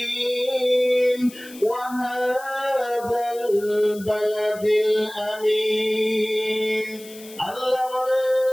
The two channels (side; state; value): left; noise; hiss, 19 dB below the sound